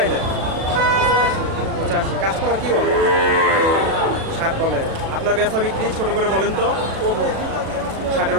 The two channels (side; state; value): left; late; 37 ms